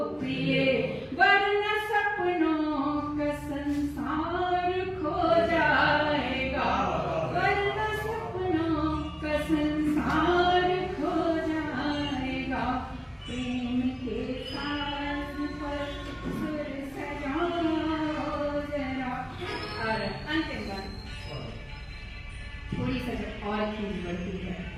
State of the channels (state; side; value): identical; both; correlation 1.00